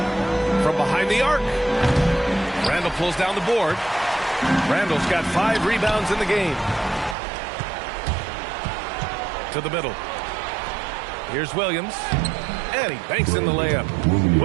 From behind the arc. Randall pulls down the board. Randall's got 5 rebounds in the game. To the middle. Here's Williams. And he banks in the layup.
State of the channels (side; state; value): left; drops out; at 7.2 s